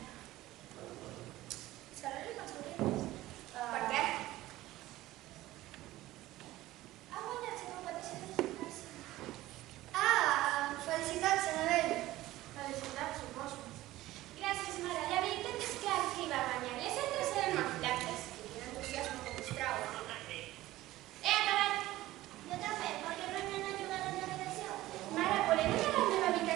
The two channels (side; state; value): left; quieter; 16.4 dB